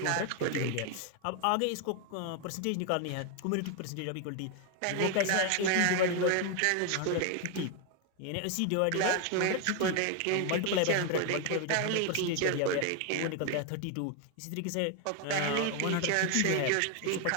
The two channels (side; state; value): both; different; correlation 0.01